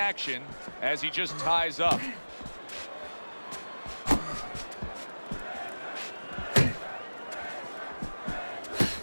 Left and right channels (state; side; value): inverted; both; correlation -1.00